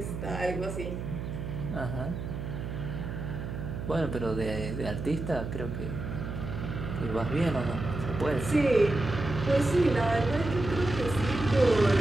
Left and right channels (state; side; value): noise; right; hum, 6 dB below the sound